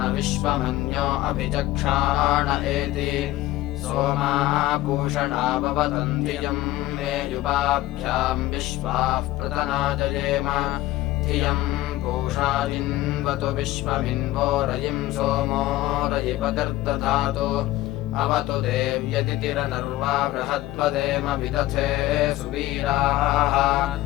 विश्वमन्यो अभिचक्षाण एति सोमाः पूषणा भवतम् धियम् मे युवाभ्याम् विश्वाः प्रतना जयेम धियम् पूषा जिन्वतु विश्वमिन्वो रयिम् सोमो रयिपकर्दधातु अवतु देव्यतिथिरनर्वा बृहद्वदेम विदथे सुवीराः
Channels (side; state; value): right; quieter; 16.4 dB